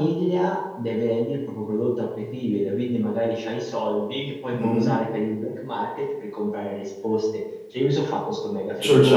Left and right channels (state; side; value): identical; both; correlation 1.00